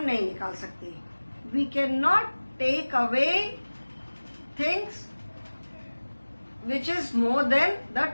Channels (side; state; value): both; inverted; correlation -1.00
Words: नहीं निकाल सकते. We can not take away things which is more than the